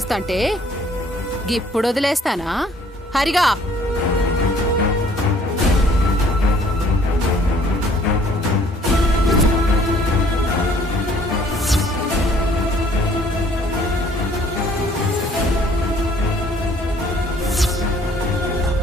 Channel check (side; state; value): both; normal; correlation 0.59